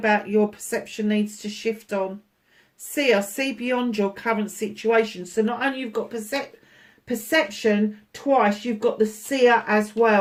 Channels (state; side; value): identical; both; correlation 1.00